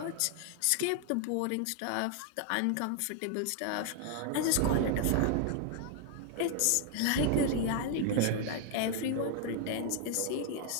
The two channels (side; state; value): both; different; correlation 0.00